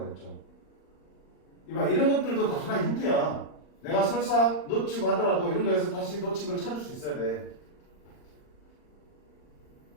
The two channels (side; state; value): right; late; 39 ms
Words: 이봐, 이런 것들도 다 하나의 힌트야. 내가 설사 놓치고 하더라도 이런 거에서 다시 놓친 걸 찾을 수 있어야 돼.